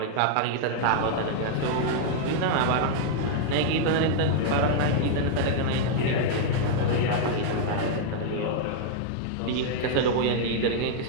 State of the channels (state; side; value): different; both; correlation -0.01